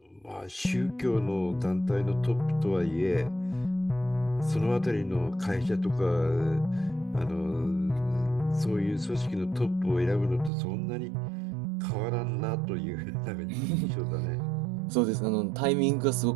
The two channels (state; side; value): drops out; left; at 10.5 s